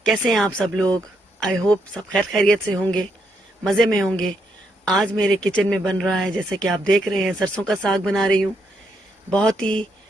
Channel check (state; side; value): normal; both; correlation 0.77